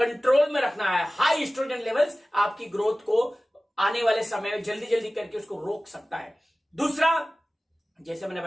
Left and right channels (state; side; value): normal; both; correlation 0.97